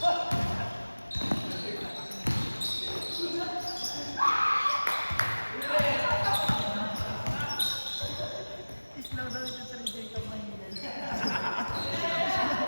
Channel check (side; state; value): both; inverted; correlation -1.00